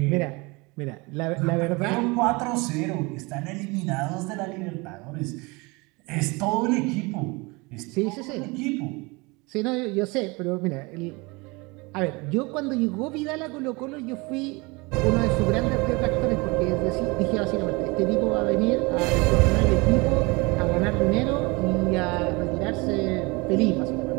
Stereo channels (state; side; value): quieter; left; 26.1 dB